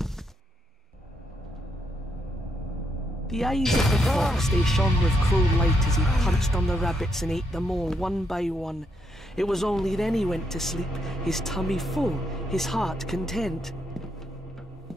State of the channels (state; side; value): normal; both; correlation 0.78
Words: The eyes of the fox, they shone with cruel light as he punched on the rabbits and ate them all one by one. It was only then he went to sleep, his tummy full, his heart content.